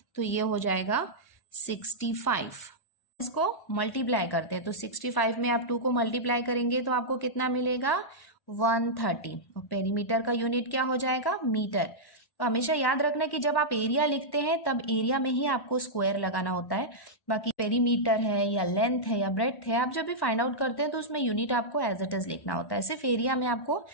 तो ये हो जाएगा 65। इसको मल्टीप्लाई करते हैं तो 65 में आप 2 को मल्टीप्लाई करेंगे तो आपको कितना मिलेगा, 130। और पेरीमीटर का यूनिट क्या हो जाएगा, मीटर। तो हमेशा याद रखना कि जब आप एरिया लिखते हैं तब एरिया में ही आपको स्क्वायर लगाना होता है। बाकी पेरीमीटर है या लेंथ है या ब्रेथ है, आप जब भी फाइंड आउट करते हैं तो उसमें यूनिट आपको एज इट इज लिखना होता है। सिर्फ एरिया में आपको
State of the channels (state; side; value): late; right; 1.1 ms